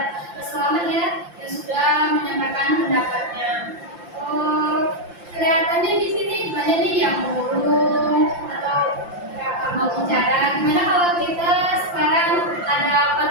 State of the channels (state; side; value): late; left; 5.8 ms